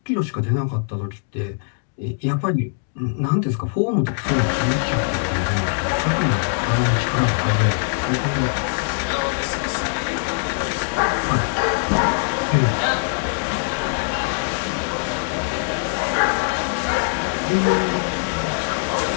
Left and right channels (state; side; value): silent; right; digital silence